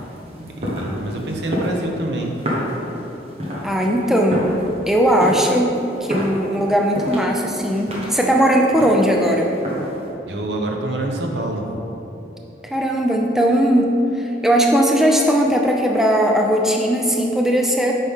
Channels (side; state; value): both; normal; correlation 0.63